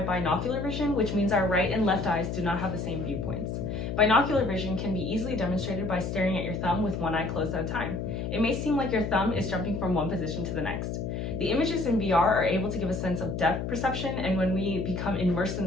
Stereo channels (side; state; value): left; noise; hum, 4 dB below the sound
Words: binocular vision, which means our right and left eyes do not have the same viewpoints. Binocular vision can be easily demonstrated by staring at your thumb with one eye closed at a time. It may seem like your thumb is jumping from one position to the next. The images in VR are able to give a sense of depth perception, and when we become immersed in